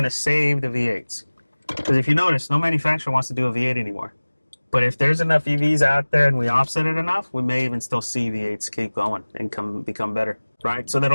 to save the V8s. Because if you notice, no manufacturer wants to do a V8 anymore. But if there's enough EVs out there and we offset it enough, we may even still see V8s keep going and become better, right? So that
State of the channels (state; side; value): inverted; both; correlation -1.00